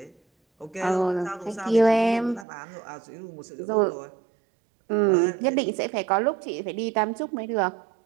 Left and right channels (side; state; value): left; drops out; at 2.5 s